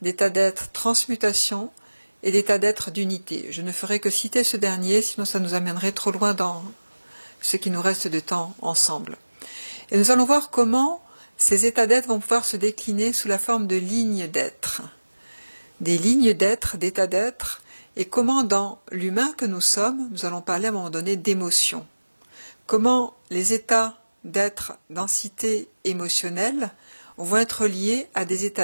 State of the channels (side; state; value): both; inverted; correlation -1.00